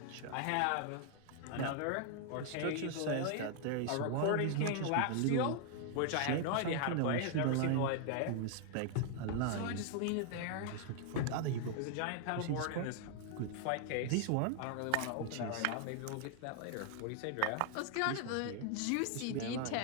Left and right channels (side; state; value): both; different; correlation 0.00